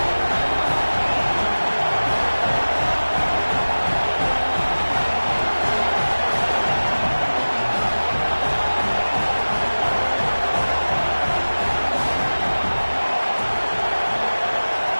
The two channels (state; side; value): inverted; both; correlation -1.00